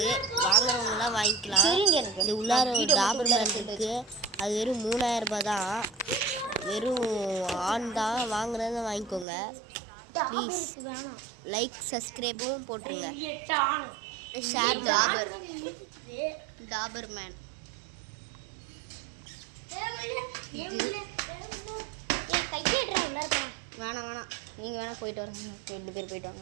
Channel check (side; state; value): left; drops out; at 9.2 s